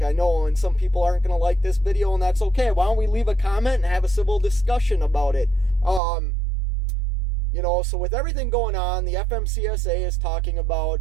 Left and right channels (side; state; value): left; drops out; at 6.0 s